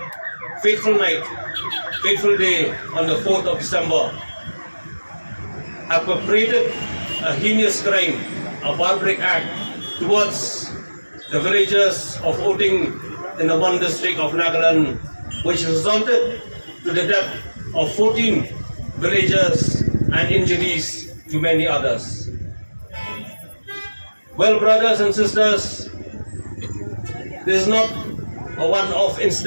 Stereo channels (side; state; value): both; inverted; correlation -1.00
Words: fateful day on the 4th of December have perpetrated a heinous crime, a barbaric act towards the villagers of Oting in the one district of Nagaland, which resulted to the death of 14 villagers and injuries to many others. Well, brothers and sisters, this is not a one-off